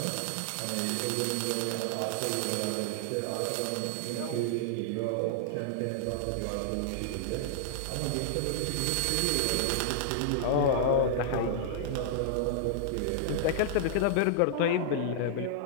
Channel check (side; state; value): both; different; correlation -0.01